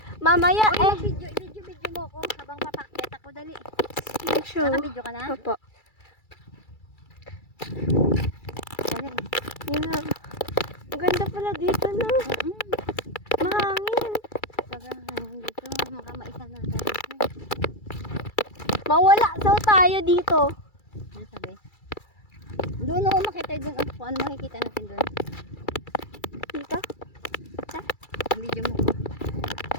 Mamaya Video mo ko habang papakyat ako. Dali. Ayan siya. Naka-video ka na? Opo. Dali. Yun na. Maganda pala dito, no? Mahangin. Sobrang hangin dito. Makamaisa na tayo. Mawala daw tayo dito. Ano sabi? Doon ako makita doon. Ano makikita natin doon? Dito? Ang video mo.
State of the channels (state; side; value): late; right; 2.3 ms